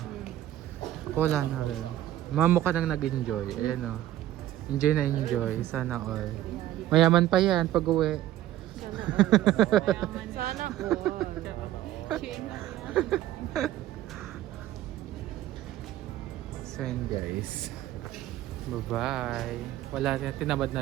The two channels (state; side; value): quieter; left; 13.6 dB